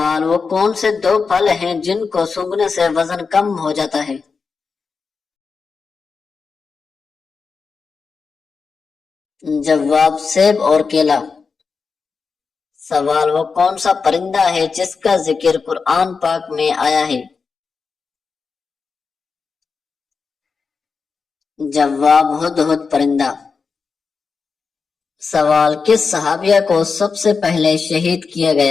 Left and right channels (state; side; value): quieter; right; 5.0 dB